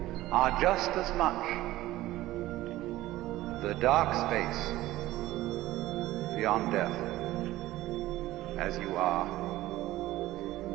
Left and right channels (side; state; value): left; quieter; 16.3 dB